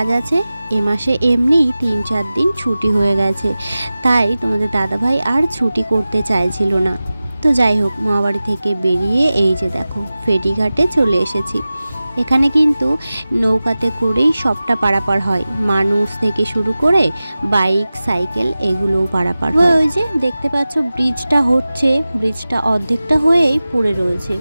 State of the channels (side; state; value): both; inverted; correlation -0.96